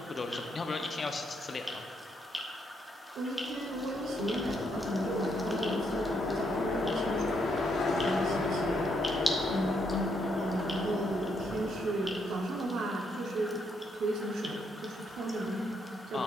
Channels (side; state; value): both; normal; correlation 0.76